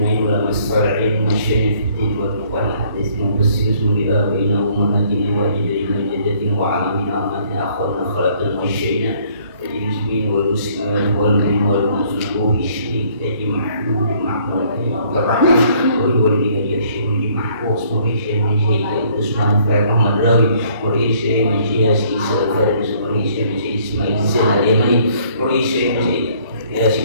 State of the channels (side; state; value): both; inverted; correlation -0.62